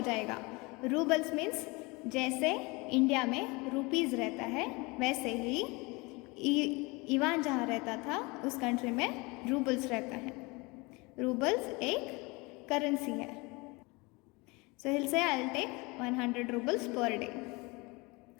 रूबल्स मीन्स जैसे इंडिया में रुपीज़ रहता है, वैसे ही इवान जहाँ रहता था उस कंट्री में रूबल्स रहता है। रूबल्स एक करेंसी है। सो हिल से I will take 100 roubles per day.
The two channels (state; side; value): quieter; right; 25.7 dB